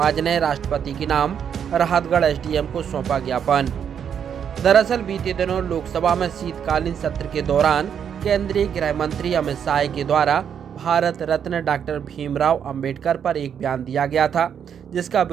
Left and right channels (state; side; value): quieter; left; 8.1 dB